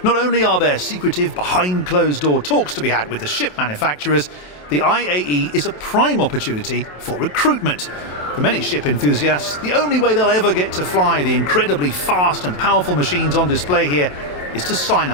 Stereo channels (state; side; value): late; right; 27 ms